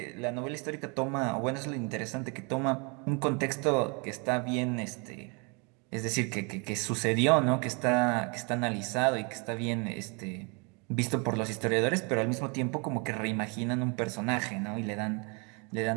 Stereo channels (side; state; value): left; quieter; 32.7 dB